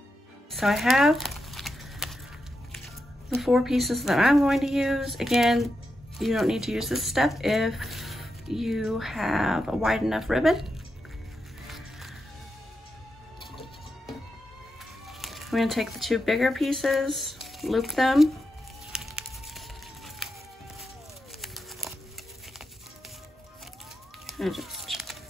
So I have the 4 pieces that I'm going to use. Again, you don't need to use this step if you have a wide enough ribbon. I'm going to take the 2 bigger pieces, loop them, and just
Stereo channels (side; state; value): both; normal; correlation 0.87